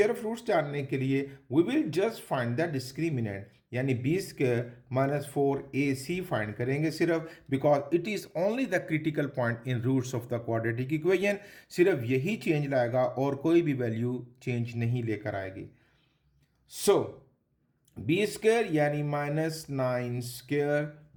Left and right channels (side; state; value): both; identical; correlation 1.00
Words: ऑफ फ्रूट्स जानने के लिए we will just find the discriminant, यानी बी स्क्वायर -4ac फाइंड करेंगे सिर्फ, because it is only the critical point in roots of the quadratic equation. सिर्फ यही चेंज लाएगा और कोई भी वैल्यू चेंज नहीं लेकर आएगी। सो बी स्क्वायर यानी -9 स्क्वायर